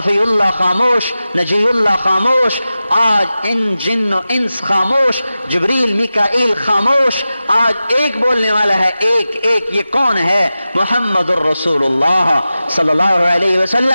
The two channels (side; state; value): both; inverted; correlation -0.94